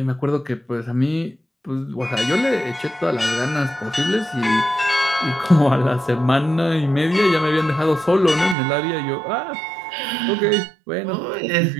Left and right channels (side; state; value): left; drops out; at 8.6 s